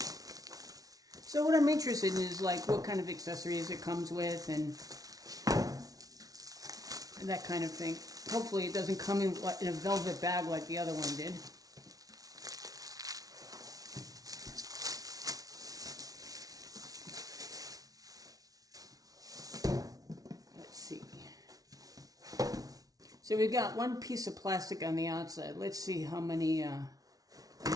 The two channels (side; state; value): left; late; 0.18 ms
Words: So what I'm interested in is like what kind of accessories it comes with and that kind of thing. Hopefully it doesn't come in a velvet bag like the other one did. Let's see. So we've got one piece of plastic on the outside. Let's see how many